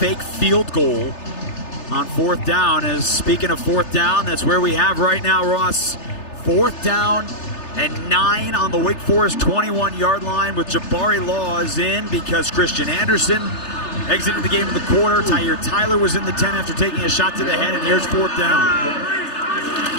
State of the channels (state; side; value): late; right; 3.3 ms